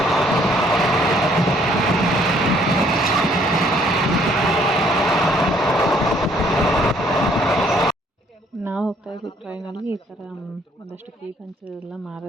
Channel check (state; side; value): normal; both; correlation 0.63